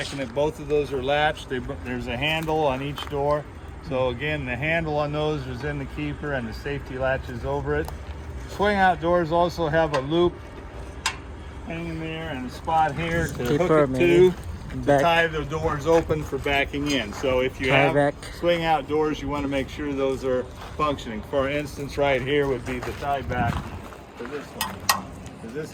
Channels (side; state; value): both; identical; correlation 1.00